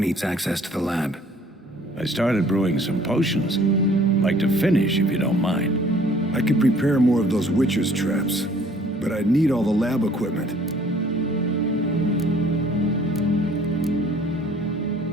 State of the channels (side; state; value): both; normal; correlation 0.56